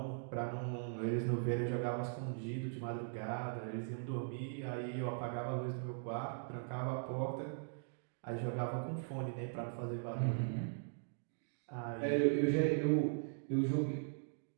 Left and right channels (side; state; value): left; silent; digital silence